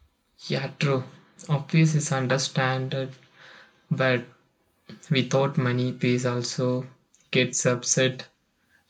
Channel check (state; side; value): identical; both; correlation 1.00